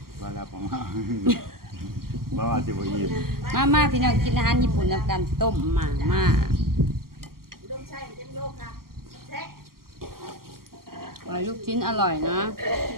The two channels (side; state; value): left; late; 0.92 ms